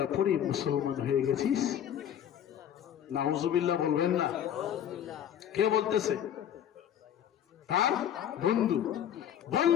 পড়ে মুসলমান হয়ে গেছিস? নাউজুবিল্লাহ বলবেন না? কে বলতেছে? তার বন্ধু।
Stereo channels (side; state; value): right; quieter; 9.9 dB